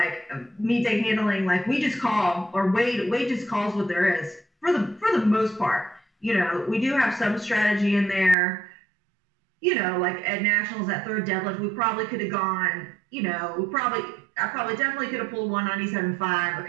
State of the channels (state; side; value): drops out; left; at 8.3 s